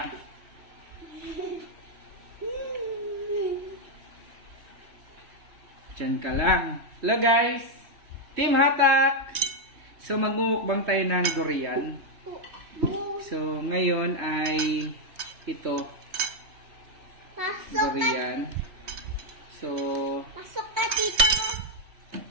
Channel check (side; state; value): left; late; 3.2 ms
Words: Diyan ka lang. Hello guys! Team Hatak! So magmumukbang tayo ng durian. So ngayon ay ito. Durian. So Pasok ka dito.